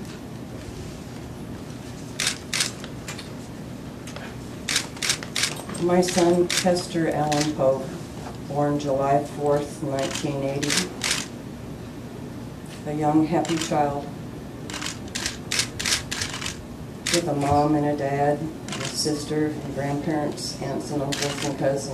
My son, Chester Poage, born July 4th, 1980. A young, happy child with a mom and a dad, and a sister and grandparents, aunts and uncles and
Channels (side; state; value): both; identical; correlation 1.00